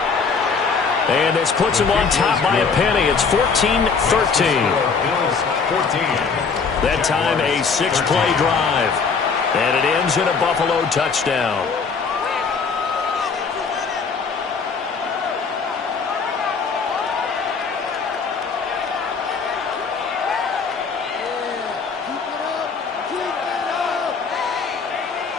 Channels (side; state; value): right; quieter; 5.3 dB